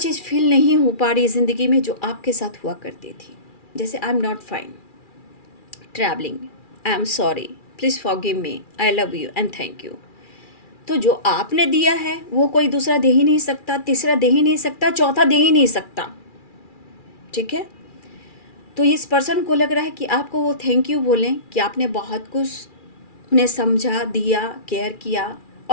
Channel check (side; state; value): right; late; 2.4 ms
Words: फील नहीं हो पा रही ज़िंदगी में जो आपके साथ हुआ करती थी। जैसे आई am not fine, travelling, I am sorry, please forgive me, I love you and thank you. तो जो आपने दिया है वो कोई दूसरा दे ही नहीं सकता, तीसरा दे ही नहीं सकता, चौथा दे ही नहीं सकता। ठीक है। तो इस पर्सन को लग रहा है कि आपको वो थैंक यू बोलें कि आपने बहुत कुछ उन्हें समझा, दिया, केयर किया